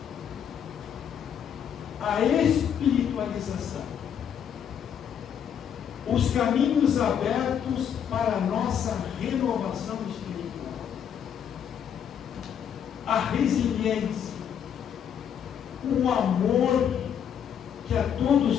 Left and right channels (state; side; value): quieter; right; 8.5 dB